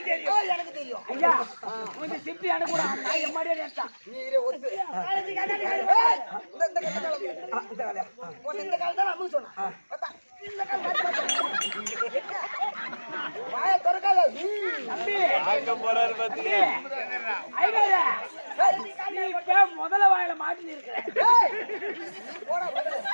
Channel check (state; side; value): inverted; both; correlation -1.00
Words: தெரியும் எனக்கு தெரியும் ஐயா கொஞ்சம் சிப்பி அனுக்கூட நான் எம்மாடியே நினைச்சான் நீரே ஒத்து இந்த காலத்துல அம்மு சொன்ன இந்த வாய திறக்காத தம்பி போறாரு முதல்ல வாயில மாட்டி இருக்கிறேன்